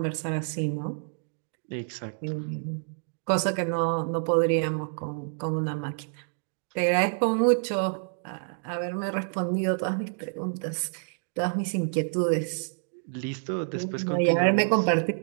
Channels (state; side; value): silent; left; 59 dB below the other